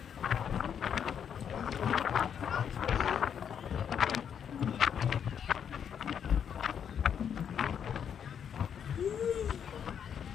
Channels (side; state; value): right; quieter; 8.1 dB